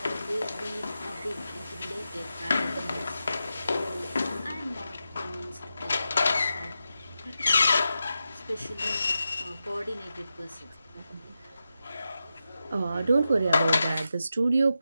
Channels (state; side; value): inverted; both; correlation -0.89